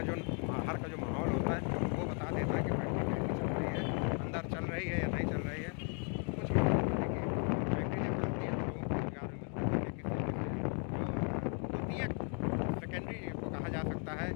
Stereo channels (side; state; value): right; quieter; 39.4 dB